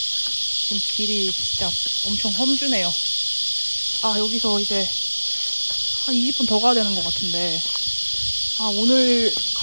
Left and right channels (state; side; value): inverted; both; correlation -1.00